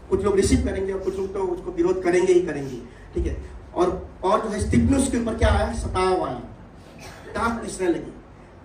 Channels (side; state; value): both; identical; correlation 1.00